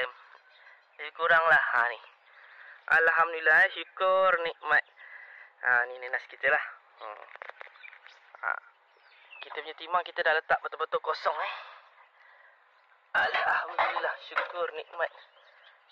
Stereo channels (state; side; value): identical; both; correlation 1.00